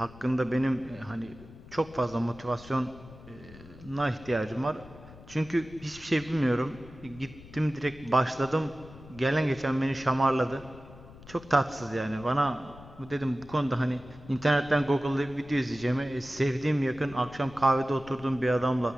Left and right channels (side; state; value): left; noise; rumble, 19 dB below the sound